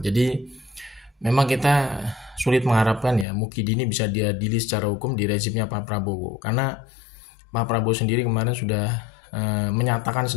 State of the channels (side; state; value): right; drops out; at 3.2 s